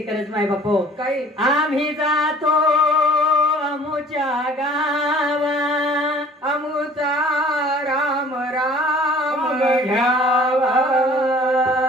करत माय बापो काही आम्ही जातो अमुच्या गावा अमुचा राम राम घ्यावा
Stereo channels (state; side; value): normal; both; correlation 0.51